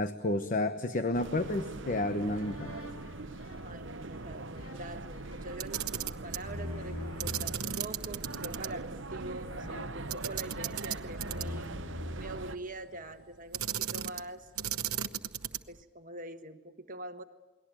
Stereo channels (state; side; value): normal; both; correlation 0.20